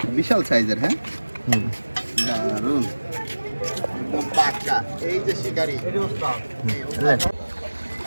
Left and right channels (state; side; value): inverted; both; correlation -1.00